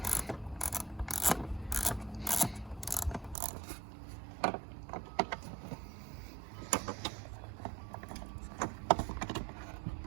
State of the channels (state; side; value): drops out; left; at 3.4 s